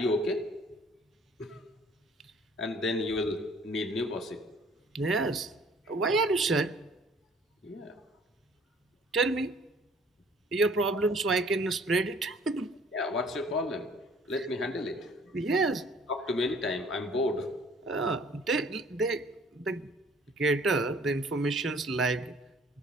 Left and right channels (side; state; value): both; normal; correlation 0.55